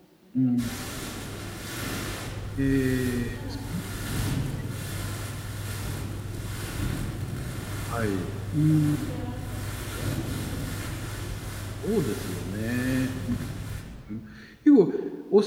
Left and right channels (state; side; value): identical; both; correlation 1.00